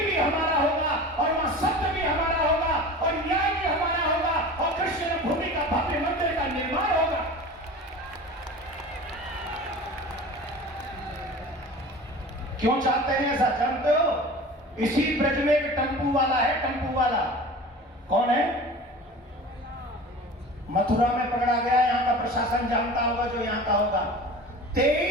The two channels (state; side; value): normal; both; correlation 0.37